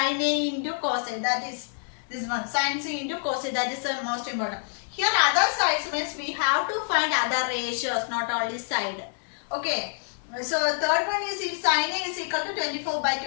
A into cos A, that is this one. Sin C into cos A, that is the most important. Here other sides means we have to find other ratios, not only side. Okay. So third one is if sin A is equal to 24 by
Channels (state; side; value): silent; right; digital silence